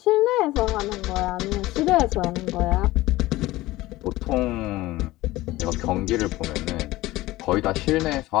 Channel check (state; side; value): quieter; right; 18.0 dB